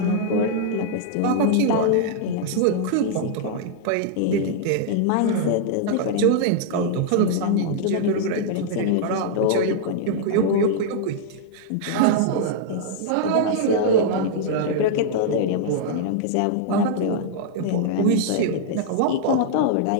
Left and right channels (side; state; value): both; different; correlation -0.01